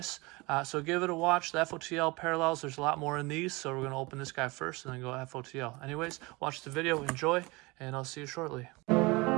So give it a watch. The FOTL parallels, there's a lot more in these. So we're going to open this guy first and then go FOTL. Anyways, watch the video, enjoy, and I'll see you shortly.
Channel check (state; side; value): quieter; left; 24.3 dB